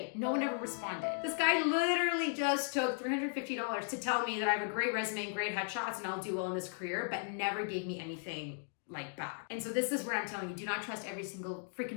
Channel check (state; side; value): silent; right; 54 dB below the other